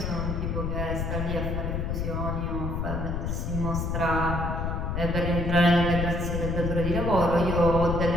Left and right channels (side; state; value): left; noise; rumble, 1 dB below the sound